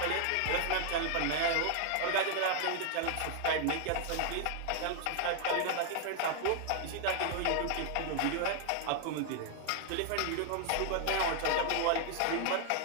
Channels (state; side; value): different; both; correlation 0.00